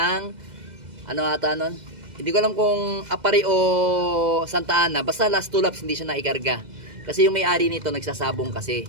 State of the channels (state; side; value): late; left; 2.0 ms